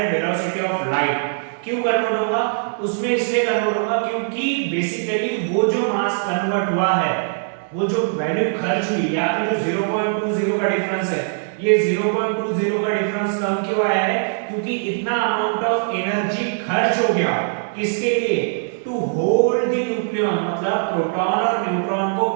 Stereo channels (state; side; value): silent; left; digital silence